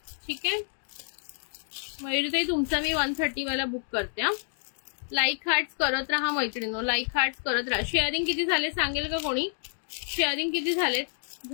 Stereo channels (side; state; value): right; silent; digital silence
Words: ठीक आहे मयुरीताई, तुमचा मी 130 वाला बुक करते. लाईक हार्ट्स करत राहा मैत्रिणींनो. लाईक हार्ट्स करत राहा. शेअरिंग किती झाले सांगेल का कोणी. शेअरिंग किती झाले